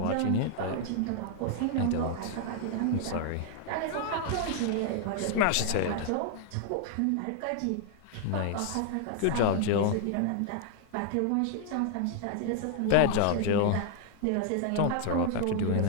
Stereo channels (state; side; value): different; both; correlation 0.00